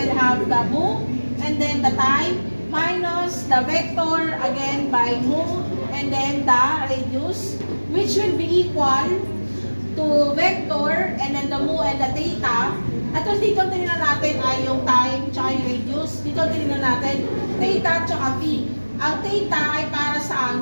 have the mu and then the time minus the vector again by mu and then the radius, which will be equal to vector and then the mu and the theta. At dito tinignan natin ay yung time tsaka yung radius. Dito tinignan natin theta tsaka phi. Ang theta ay para sa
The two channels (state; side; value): inverted; both; correlation -1.00